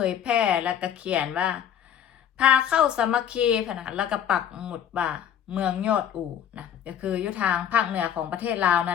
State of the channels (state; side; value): quieter; right; 9.3 dB